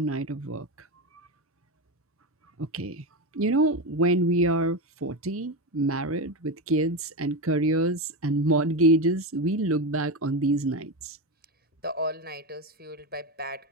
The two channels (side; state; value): both; normal; correlation 0.15